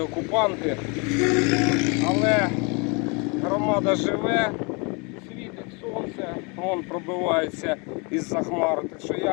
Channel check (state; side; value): quieter; right; 31.4 dB